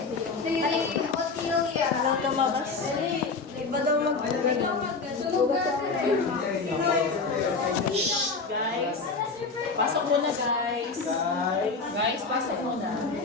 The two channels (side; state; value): right; quieter; 4.3 dB